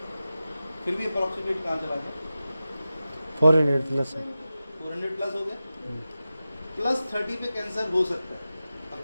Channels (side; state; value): both; inverted; correlation -0.94